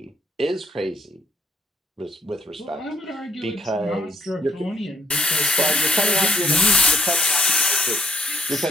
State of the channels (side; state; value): both; normal; correlation 0.68